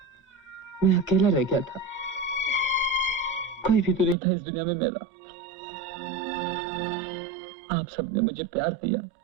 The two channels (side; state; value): left; drops out; at 4.2 s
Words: मैं अकेला रह गया था। कोई भी तो नहीं था इस दुनिया में मेरा। आप सबने मुझे प्यार दिया,